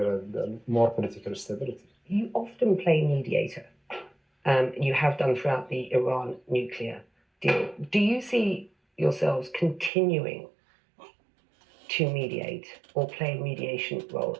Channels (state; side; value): drops out; left; at 9.9 s